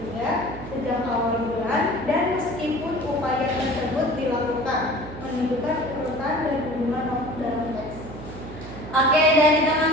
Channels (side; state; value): right; noise; hum, 12 dB below the sound